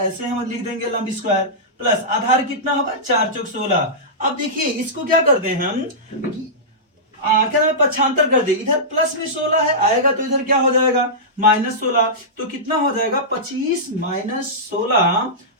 हम लिख देंगे लंब स्क्वायर, प्लस आधार कितना होगा 4 चौक 16। अब देखिए इसको क्या कर दे हम, क्या नाम है, पक्षांतर कर दे। इधर प्लस में 16 है, आएगा तो इधर क्या हो जाएगा -16। तो कितना हो जाएगा 25 - 16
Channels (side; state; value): both; normal; correlation -0.15